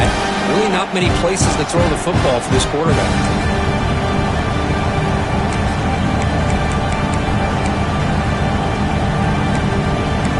really not many places to throw the football for this quarterback.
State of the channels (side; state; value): both; identical; correlation 1.00